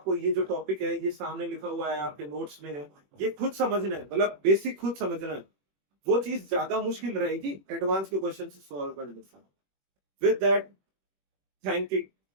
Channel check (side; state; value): left; late; 21 ms